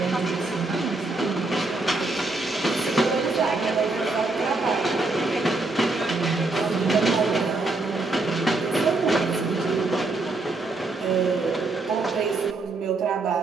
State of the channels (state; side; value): quieter; left; 3.3 dB